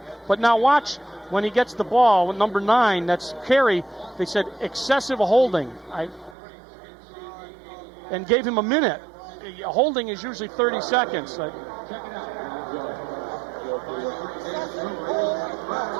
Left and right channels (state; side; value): drops out; left; at 6.4 s